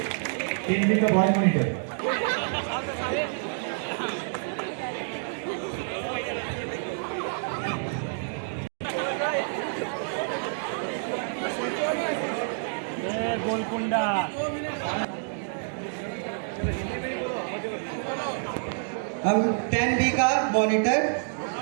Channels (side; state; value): left; silent; digital silence